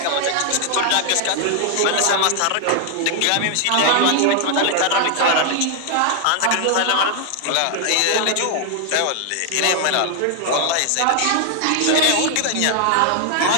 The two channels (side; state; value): both; different; correlation 0.00